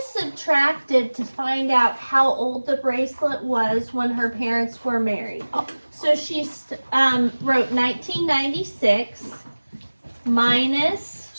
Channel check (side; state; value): both; inverted; correlation -1.00